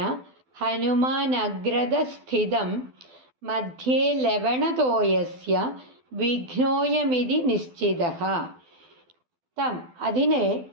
ഹനുമാനഗ്രതസ്ഥിതം മധ്യേ ലവണതോയസ്യ വിഘ്നോയമിതി നിശ്ചിതഃ. തം അതിനെ,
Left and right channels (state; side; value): late; left; 12 ms